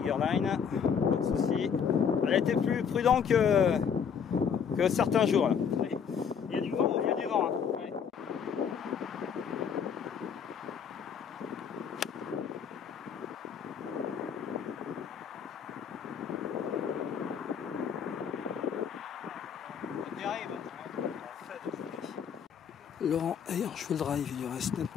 Line, pas de souci. Elle a été plus prudente que certains jours. Là. Il y a du vent, il y a du vent. Hein. Ouais. Laurent ayant joué le drive, il lui reste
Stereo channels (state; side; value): quieter; right; 7.2 dB